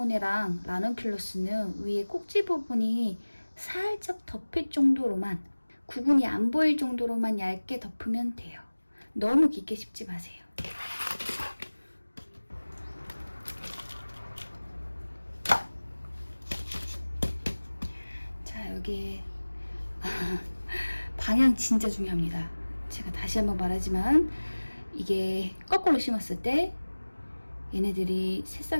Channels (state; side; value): inverted; both; correlation -1.00